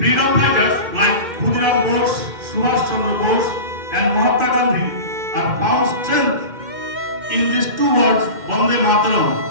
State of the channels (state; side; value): late; left; 2.1 ms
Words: fighters like Khudiram Bose, Subhash Chandra Bose, and Mahatma Gandhi are found strength in these two words, Bande Mataram,